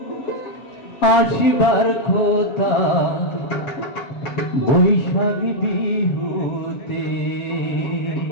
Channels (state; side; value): late; right; 7.3 ms